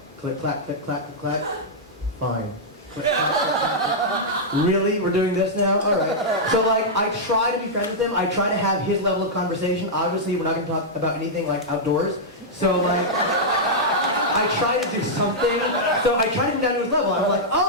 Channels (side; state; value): both; normal; correlation -0.07